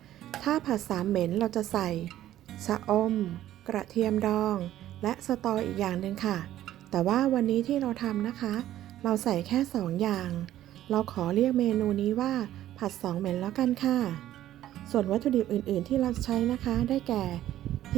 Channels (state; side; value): quieter; left; 13.0 dB